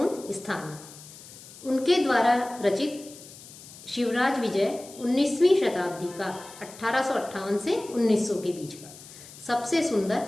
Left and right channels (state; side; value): noise; left; hiss, 18 dB below the sound